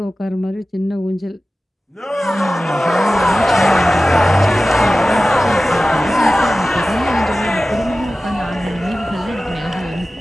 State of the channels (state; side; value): normal; both; correlation 0.95